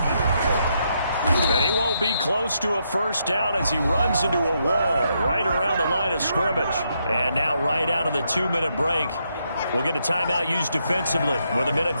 And he won't be close to a first down as he runs into a wall right around the line of scrimmage. And now right out of the 2-minute break, we'll get a timeout used defensively with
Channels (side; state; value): both; inverted; correlation -0.78